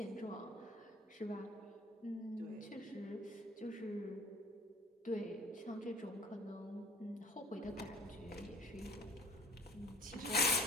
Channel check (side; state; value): both; normal; correlation 0.48